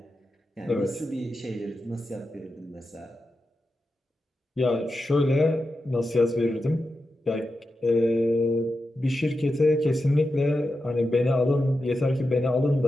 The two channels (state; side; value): normal; both; correlation 0.90